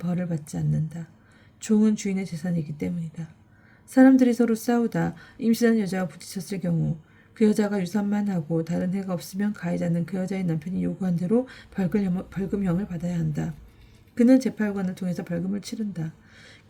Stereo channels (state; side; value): identical; both; correlation 1.00